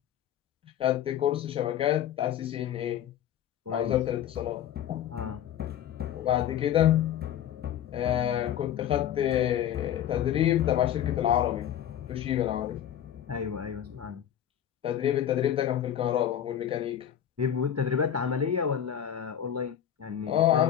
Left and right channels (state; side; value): quieter; right; 10.3 dB